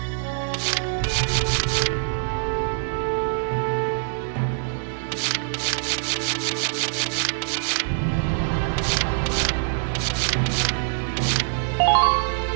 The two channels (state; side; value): silent; left; 63 dB below the other